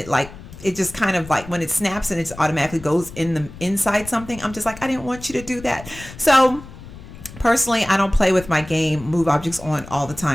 just kind of like when it snaps and it automatically goes in the inside something, I'm just like, I didn't want you to do that. So personally, I don't play with my game move objects on all the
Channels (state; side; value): noise; left; rumble, 16 dB below the sound